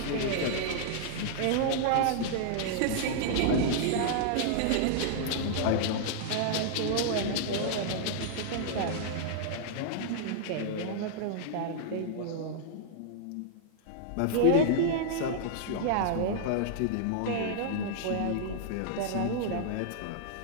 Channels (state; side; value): different; both; correlation -0.01